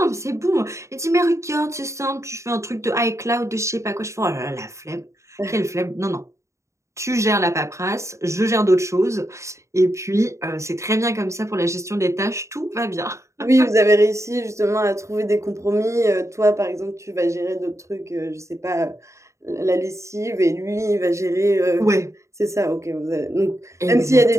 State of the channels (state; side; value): late; left; 0.14 ms